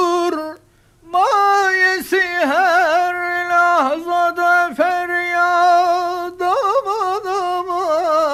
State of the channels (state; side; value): identical; both; correlation 1.00